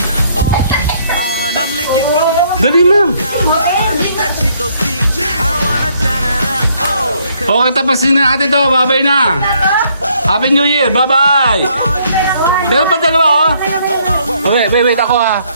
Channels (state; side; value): inverted; both; correlation -0.68